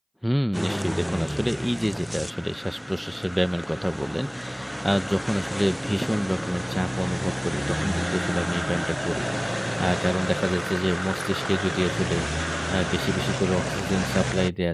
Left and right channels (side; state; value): both; identical; correlation 1.00